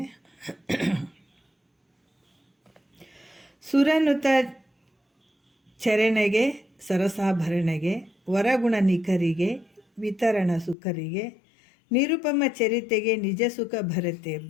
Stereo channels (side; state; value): right; drops out; at 10.8 s